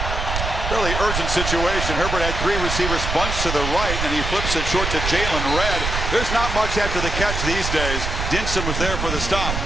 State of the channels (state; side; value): noise; right; rumble, 3 dB below the sound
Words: fairly urgent situation. Herbert had 3 receivers bunched to the right, and he flips it short to Jalen Redd. There's not much after the catch these days. Dinson was there for the stop.